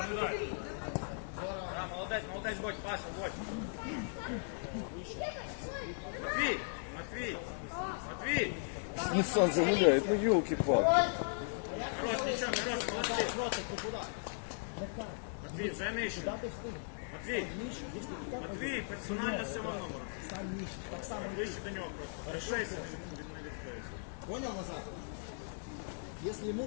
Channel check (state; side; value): silent; right; digital silence